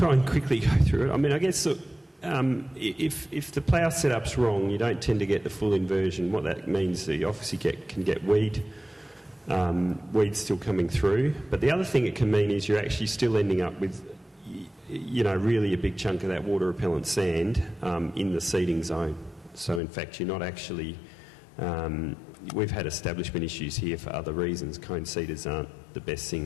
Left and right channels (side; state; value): right; drops out; at 19.8 s